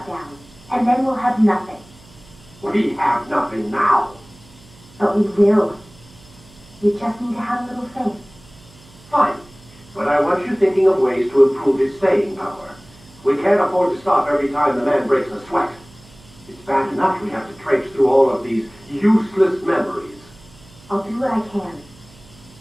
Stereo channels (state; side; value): noise; right; hum, 24 dB below the sound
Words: down. And then we'll have nothing. We have nothing now. But we will. You just need to have a little faith. Fine. But I want you thinking of ways to improve his staying power. We can't afford to stop every time the man breaks a sweat. It's bad enough we have to traipse through all of these useless memories. I'll do what I can.